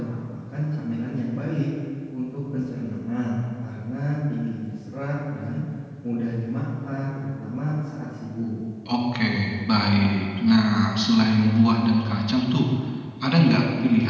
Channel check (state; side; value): identical; both; correlation 1.00